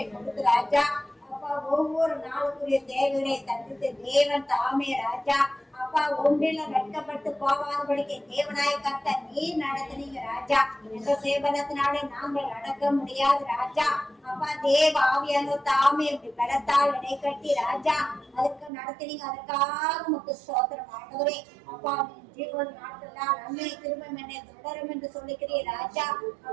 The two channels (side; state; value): left; drops out; at 18.7 s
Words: கொடுத்து ராஜா. அப்பா ஒவ்வொரு நாளுக்குரிய தேவைகளை தடுத்து தேவன் தாமே ராஜா. அப்பா ஒன்றில வெட்கப்பட்டு போகாதபடிக்கு தேவனாய கர்த்தர் நீ நடத்தினீங்க ராஜா. எந்த சேவனத்தினாலே நாங்கள் நடக்க முடியாது ராஜா. அப்பா தேவ ஆவியான தாமே இப்படி பலத்தால் இடை கட்டி ராஜா அதுக்கு நடத்தினீங்க. அதற்காக உங்களுக்கு ஸ்தோத்திரம் ஆண்டவரே. அப்பா ஜீவன் நாட்கள்லாம் நன்மை திரும்பம் என்னை தொடரும் என்று சொல்லிக்கிறீர் ராஜா.